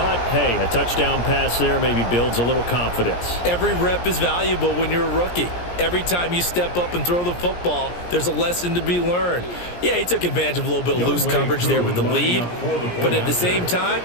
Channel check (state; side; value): late; right; 17 ms